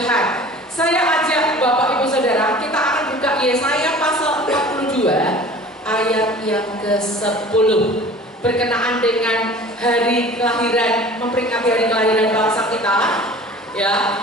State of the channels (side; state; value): both; normal; correlation 0.43